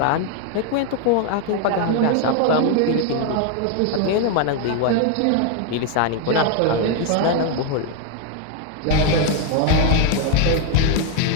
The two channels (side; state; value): both; different; correlation 0.00